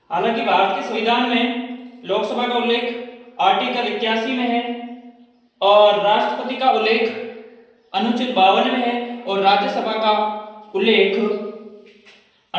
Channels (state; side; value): identical; both; correlation 1.00